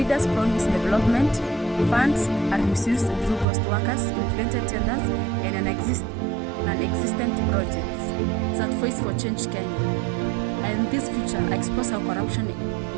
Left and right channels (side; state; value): left; drops out; at 3.5 s